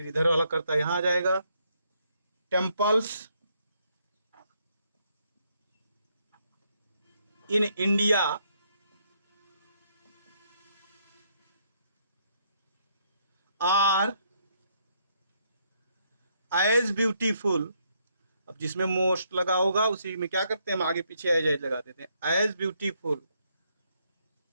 इधर वाला करता यहां आ जाएगा, temples in India are as beautiful. अब जिसमें मोस्ट लगा होगा उसी में क्या करते हैं, हम आगे पीछे एज लगा देते हैं, एज ब्यूटीफुल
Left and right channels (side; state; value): both; inverted; correlation -0.73